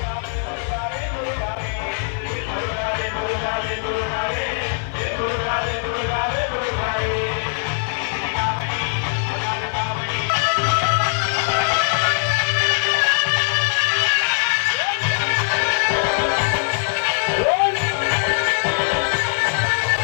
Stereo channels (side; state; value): right; silent; 65 dB below the other